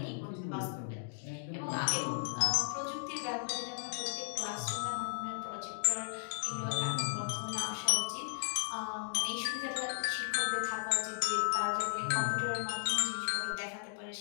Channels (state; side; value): silent; right; digital silence